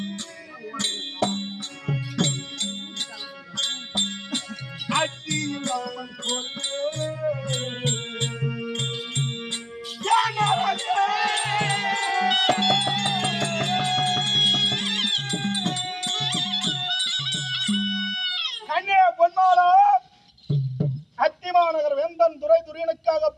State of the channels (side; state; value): both; identical; correlation 1.00